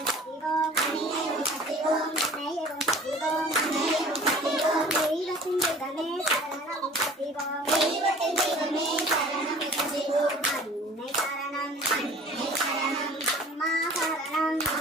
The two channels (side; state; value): both; normal; correlation 0.47